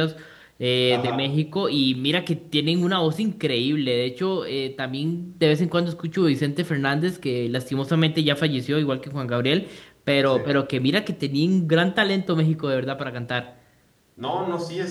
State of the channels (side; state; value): both; identical; correlation 1.00